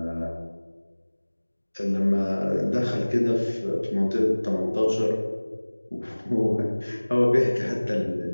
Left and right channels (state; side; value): inverted; both; correlation -1.00